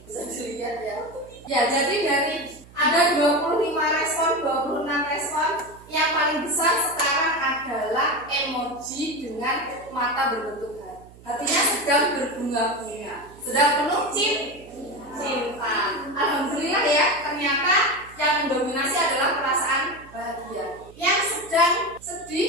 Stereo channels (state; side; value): noise; right; hum, 22 dB below the sound